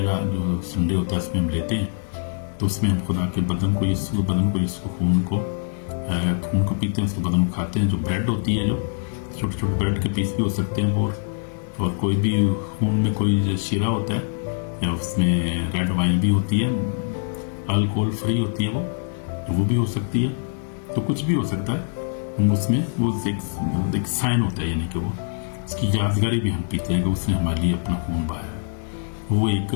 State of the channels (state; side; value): silent; right; 63 dB below the other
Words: जो संडे होता है उसमें हम लेते हैं। तो उसमें हम खुदा के बदन को, यीशु खून को पीते हैं, उसके बदन को खाते हैं। जो ब्रेड होती है, जो छोटे छोटे ब्रेड के पीस भी हो सकते हैं, और कोई भी खून में कोई शीरा होता है या उसमें रेड वाइन भी होती है, अल्कोहल फ्री होती है वो भी हो सकती है। तो कुछ भी हो सकता है, उसमें वो एक साइन होता है, यानी कि वो उसकी यादगारी भी हम पीते हैं कि उसने हमारे लिए अपना खून बहाया है। वो एक